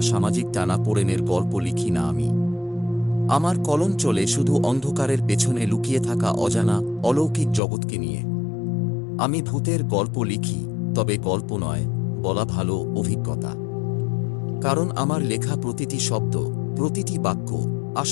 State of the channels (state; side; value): drops out; right; at 7.6 s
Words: সামাজিক টানাপোড়েনের গল্প লিখি না আমি। আমার কলম চলে শুধু অন্ধকারের পেছনে লুকিয়ে থাকা অজানা অলৌকিক জগৎকে নিয়ে। আমি ভূতের গল্প লিখি, তবে গল্প নয়, বলা ভালো, অভিজ্ঞতা। কারণ আমার লেখা প্রতিটি শব্দ, প্রতিটি বাক্য